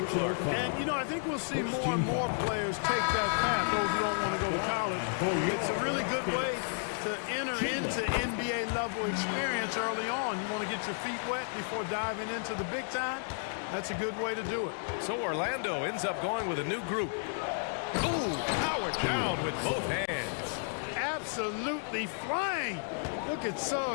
Clark. And, you know, I think we'll see more and more players take that path, those who don't want to go to college. It's a really good way to enter into NBA level experience early on. You want to get your feet wet before diving into the big time? That's a good way to do it. So Orlando ends up going with a new group. Ooh, powered down with both hands. Absolutely flying. Look at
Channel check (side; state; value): right; silent; digital silence